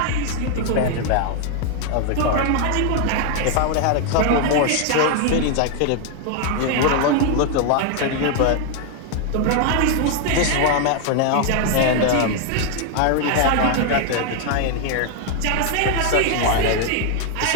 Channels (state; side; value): different; both; correlation 0.00